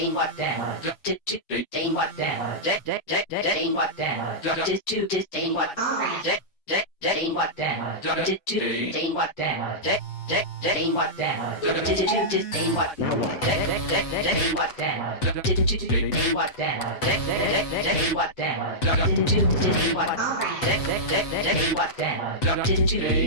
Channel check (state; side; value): late; right; 8.0 ms